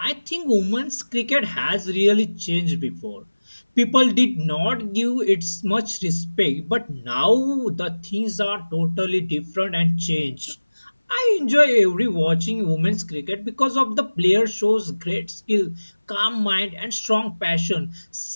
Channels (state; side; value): inverted; both; correlation -1.00